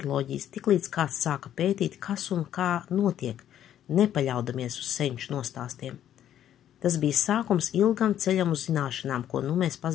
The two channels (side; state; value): right; quieter; 10.9 dB